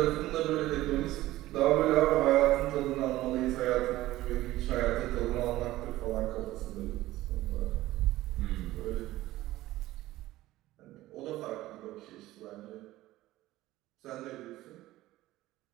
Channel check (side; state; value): left; quieter; 16.4 dB